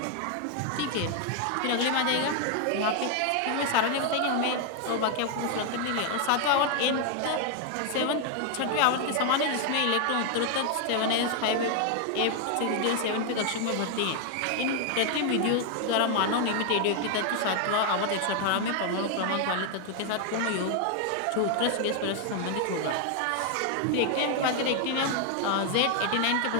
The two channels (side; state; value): both; different; correlation 0.00